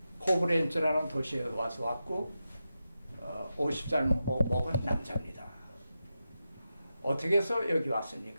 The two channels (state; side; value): inverted; both; correlation -0.90